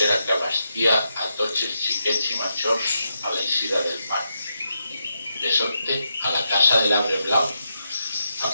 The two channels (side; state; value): both; inverted; correlation -0.84